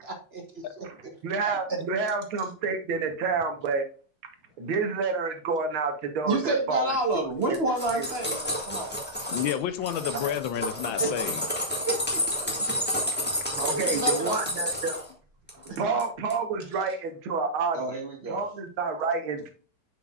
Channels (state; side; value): normal; both; correlation -0.12